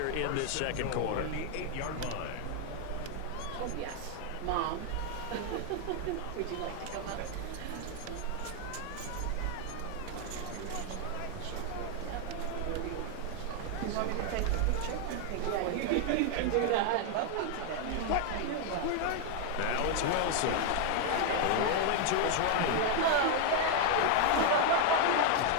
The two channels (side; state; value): both; different; correlation 0.00